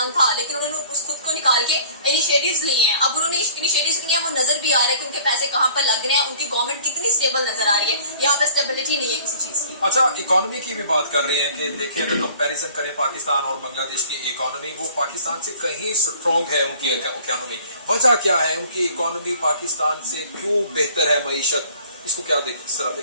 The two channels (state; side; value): inverted; both; correlation -0.50